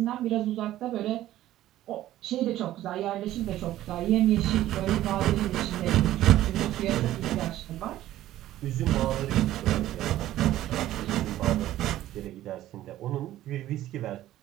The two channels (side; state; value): left; quieter; 14.0 dB